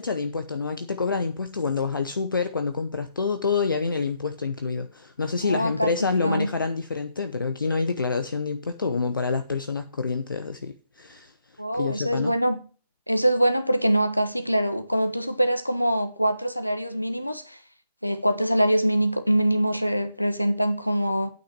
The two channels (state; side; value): inverted; both; correlation -0.83